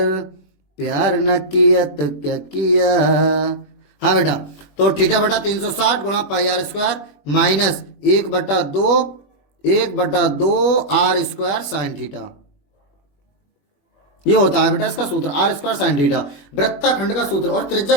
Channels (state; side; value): late; right; 21 ms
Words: प्यार न किया तो क्या किया। हाँ बेटा, तो थीटा बटा 360 गुणा pi r square minus 1/2 r square sine theta, ये होता है बेटा इसका सूत्र, आर स्क्वायर साइन थीटा। वृत्तखंड का सूत्र और त्रिज्या